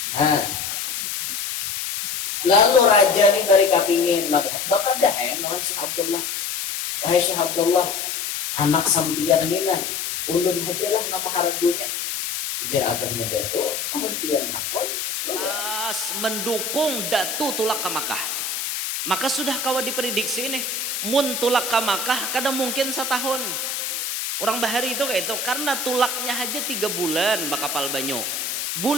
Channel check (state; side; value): noise; left; hiss, 3 dB below the sound